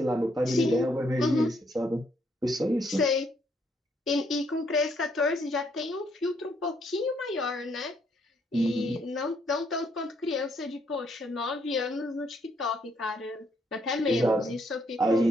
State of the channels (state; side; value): normal; both; correlation 0.71